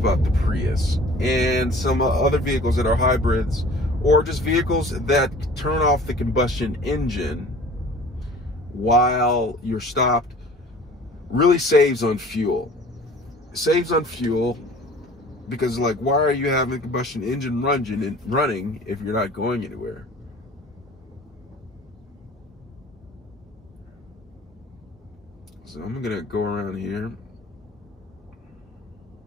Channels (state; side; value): normal; both; correlation 0.46